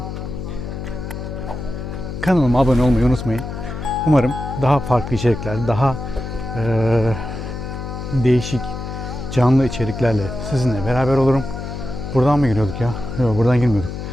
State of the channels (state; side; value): noise; left; hum, 7 dB below the sound